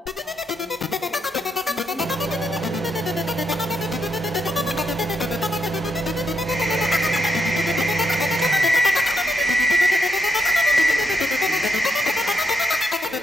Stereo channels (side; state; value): both; normal; correlation 0.80